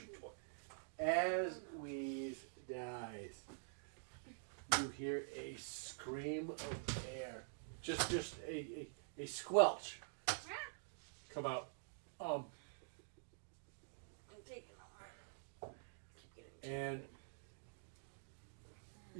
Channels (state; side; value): silent; left; digital silence